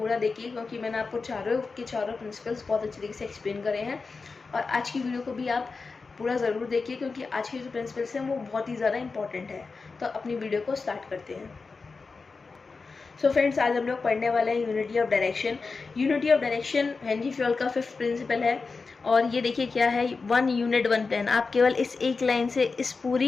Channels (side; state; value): right; quieter; 4.4 dB